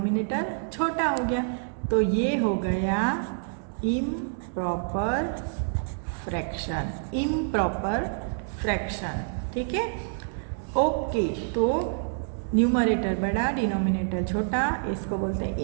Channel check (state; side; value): silent; left; digital silence